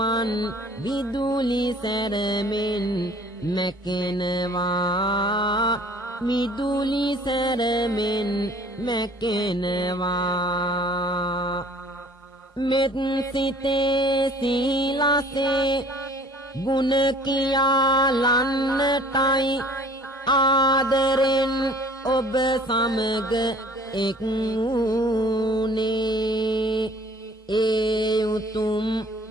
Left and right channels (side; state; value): both; normal; correlation 0.52